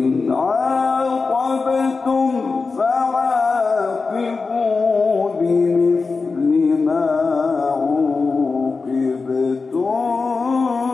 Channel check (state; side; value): quieter; right; 4.3 dB